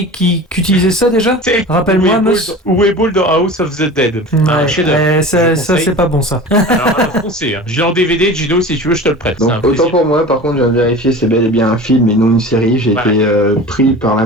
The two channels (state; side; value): normal; both; correlation 0.36